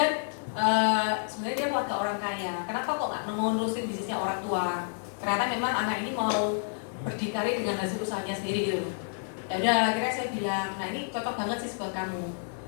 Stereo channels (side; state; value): right; silent; digital silence